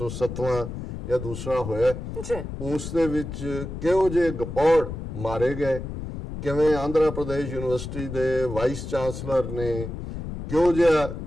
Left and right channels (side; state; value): left; noise; rumble, 7 dB below the sound